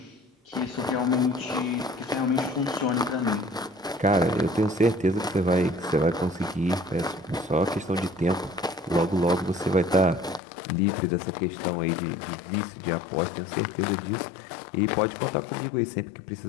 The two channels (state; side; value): drops out; right; at 10.4 s